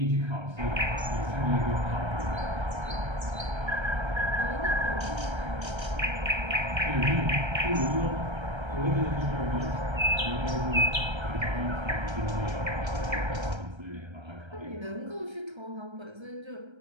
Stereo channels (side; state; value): left; late; 1.3 ms